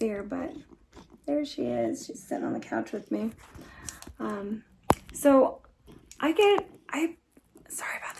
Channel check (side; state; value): both; identical; correlation 1.00